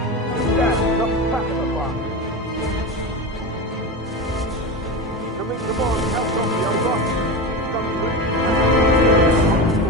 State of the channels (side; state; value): both; normal; correlation 0.22